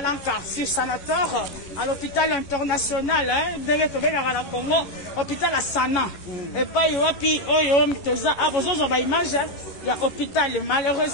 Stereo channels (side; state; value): right; late; 11 ms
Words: sur Sanator, à l'hôpital international, Congo, hôpital à Sana. Et pas il y a hôpital.